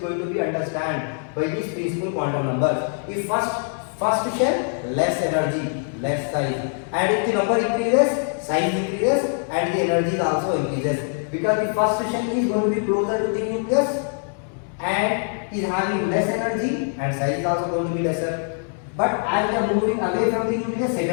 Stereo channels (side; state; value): right; silent; 59 dB below the other